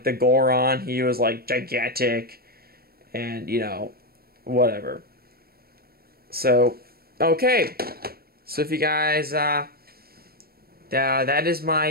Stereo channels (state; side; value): late; left; 0.44 ms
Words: the Goron, he was like gigantic. And, whatever. So, okay. So if you guys, that is